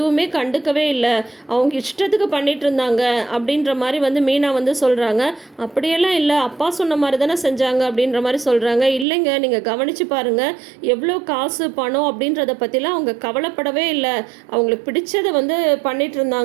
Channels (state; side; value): drops out; left; at 9.1 s